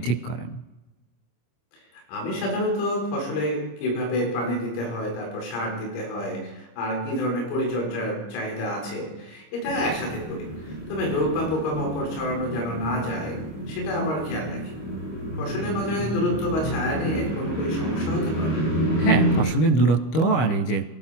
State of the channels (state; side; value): late; right; 25 ms